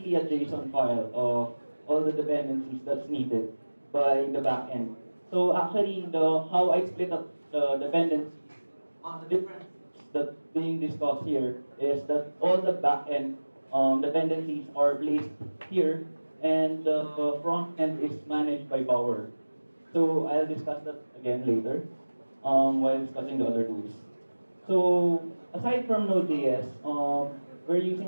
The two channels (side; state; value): both; inverted; correlation -1.00